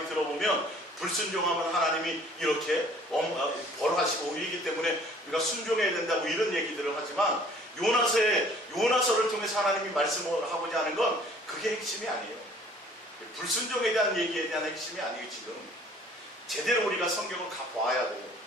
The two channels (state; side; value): normal; both; correlation 0.55